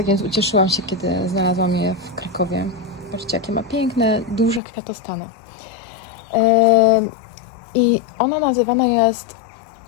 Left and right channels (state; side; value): drops out; right; at 4.6 s